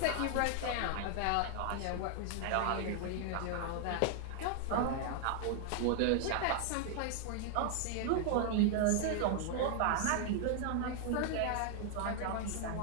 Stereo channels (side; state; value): both; different; correlation 0.00